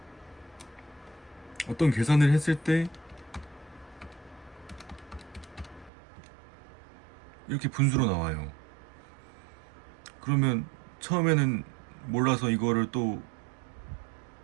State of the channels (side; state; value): left; drops out; at 5.9 s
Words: 어떤 계산을 했을 때 이렇게 분수로 나와요. 그러면 처음에는 몰라서 이거를 또